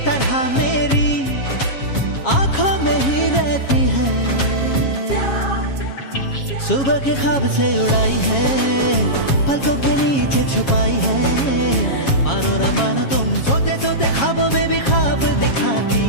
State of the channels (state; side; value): late; right; 7.3 ms